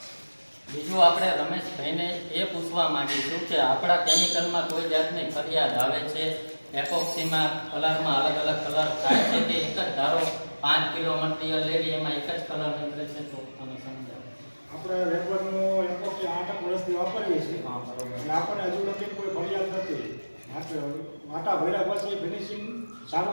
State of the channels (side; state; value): both; inverted; correlation -1.00